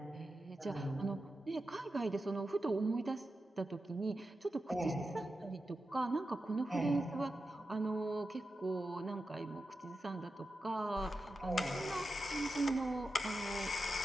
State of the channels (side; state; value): both; normal; correlation 0.90